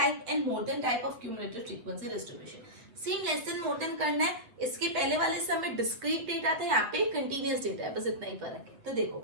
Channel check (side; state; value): left; late; 8.2 ms